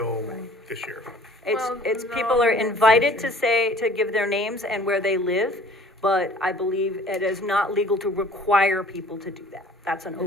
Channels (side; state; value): both; normal; correlation 0.51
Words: this year. It's Well, people no, are that's invited true. to give their names and where they live, but I believe it is not legal to require people to do that. That's an